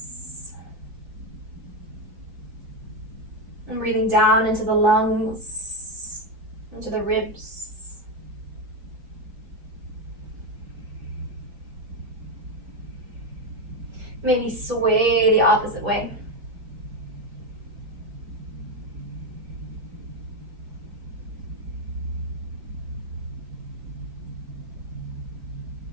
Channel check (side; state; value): left; late; 4.5 ms